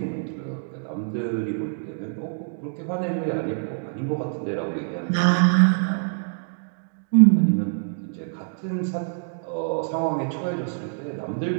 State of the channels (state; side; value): silent; left; digital silence